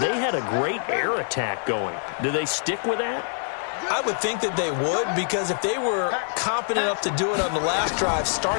had a great air attack going. Do they stick with that? I would think that they would, because if they were confident enough to do it on the last drive,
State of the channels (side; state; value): right; silent; 62 dB below the other